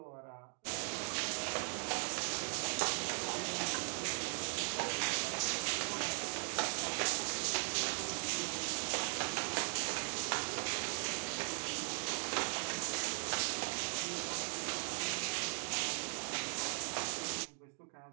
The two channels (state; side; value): silent; left; 52 dB below the other